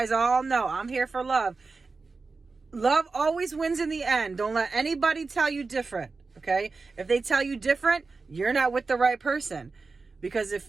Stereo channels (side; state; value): left; quieter; 4.1 dB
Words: all know I'm here for love. Love always wins in the end. Don't let anybody tell you different, okay? If they tell you different, you're not with the right person. Because